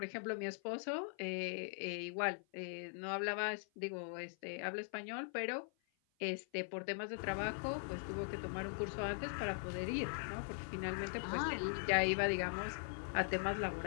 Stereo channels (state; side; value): silent; right; 50 dB below the other